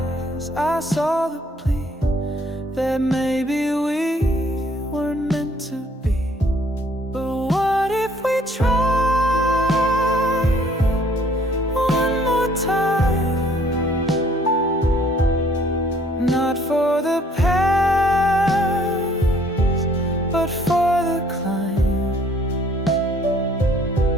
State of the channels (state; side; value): normal; both; correlation 0.61